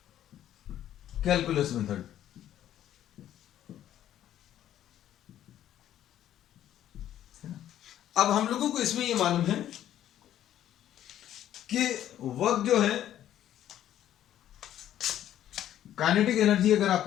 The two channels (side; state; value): right; quieter; 11.6 dB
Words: कैलकुलस मेथड। अब हम लोगों को इसमें ये मालूम है कि वर्क जो है, काइनेटिक एनर्जी अगर